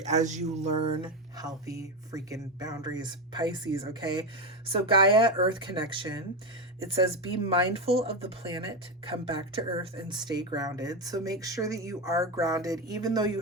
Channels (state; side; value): normal; both; correlation 0.13